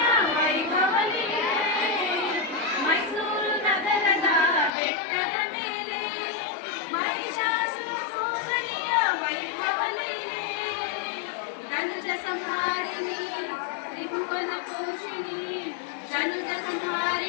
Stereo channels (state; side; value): drops out; right; at 4.7 s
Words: ವೈಭವಲಿಗೆ, ಮೈಸೂರು ನಗರದ ಬೆಟ್ಟದ ಮೇಲೆ ಮಹಿಷಾಸುರ ಸೋದರಿಯ ವೈಭವಲಿಗೆ, ಧನುಜ ಸಂಹಾರಿಣಿ ತ್ರಿಭುವನ ಪೋಷಿಣಿ, ಧನುಜ